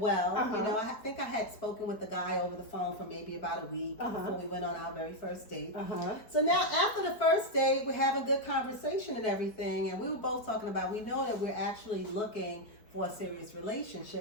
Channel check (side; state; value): right; late; 4.6 ms